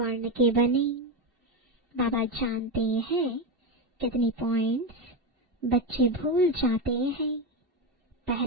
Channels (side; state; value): left; late; 2.7 ms